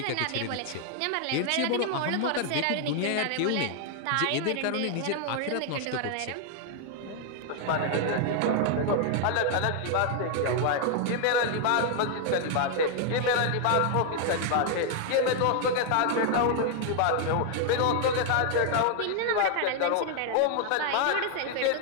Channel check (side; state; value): both; different; correlation 0.00